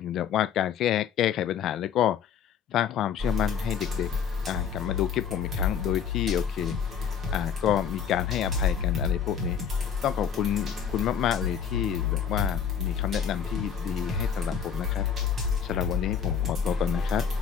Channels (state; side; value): quieter; right; 7.8 dB